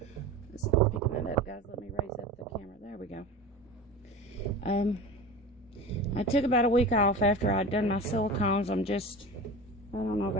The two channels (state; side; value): normal; both; correlation 0.32